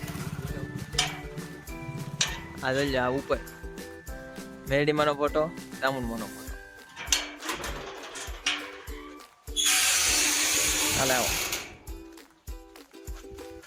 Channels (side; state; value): both; identical; correlation 1.00